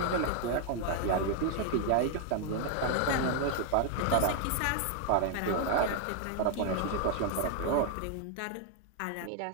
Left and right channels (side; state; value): both; different; correlation 0.00